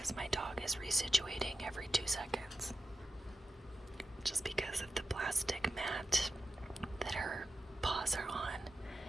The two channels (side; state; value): both; normal; correlation 0.91